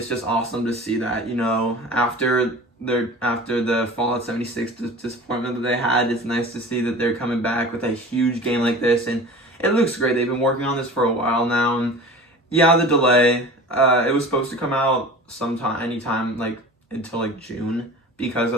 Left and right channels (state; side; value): normal; both; correlation 0.38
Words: just awesome to see that. You know, after the Fallout 76 disappointment that they had, it's nice to see that they're coming back with a huge game like this, and it looks great. They've been working on this for a while now, and yeah, the delay. It was supposed to come out anytime like until like June, because